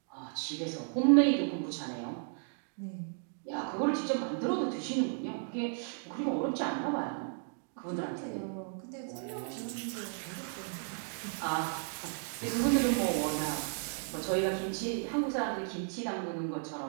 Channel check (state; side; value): silent; left; 55 dB below the other